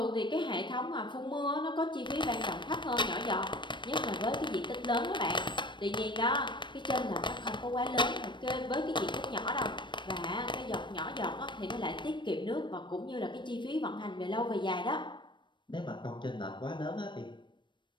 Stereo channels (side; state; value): right; late; 0.22 ms